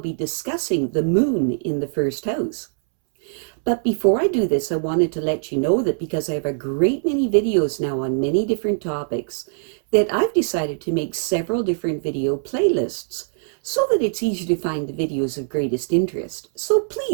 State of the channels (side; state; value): left; silent; 64 dB below the other